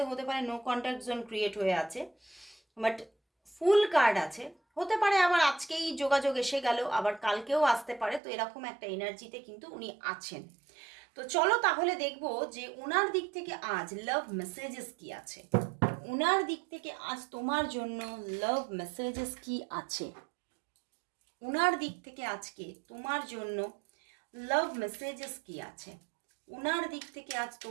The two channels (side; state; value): left; drops out; at 8.2 s